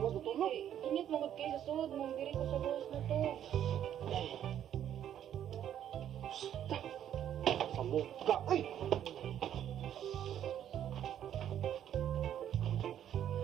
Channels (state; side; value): quieter; left; 10.3 dB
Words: na tulog? Init mo gud kay sa sud mong diri ko sa gawas na to. Sa mukha! Ay!